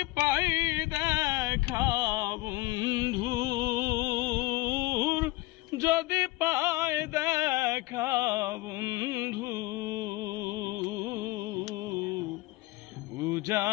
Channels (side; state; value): right; quieter; 19.8 dB